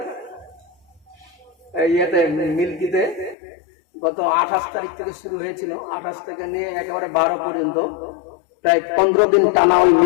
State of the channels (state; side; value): drops out; right; at 3.4 s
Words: ইয়েতে মিল্কিতে গত 28 তারিখ থেকে শুরু হয়েছিল, 28 থেকে নিয়ে একেবারে 12 পর্যন্ত প্রায় 15 দিন টানা ওই